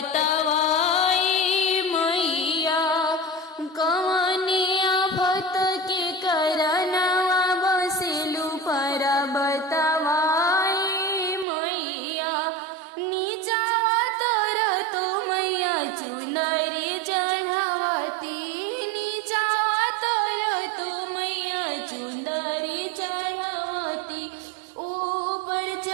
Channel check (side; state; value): left; drops out; at 11.5 s